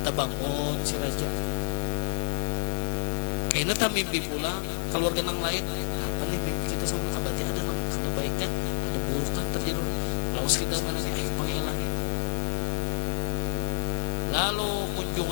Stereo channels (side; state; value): right; silent; 59 dB below the other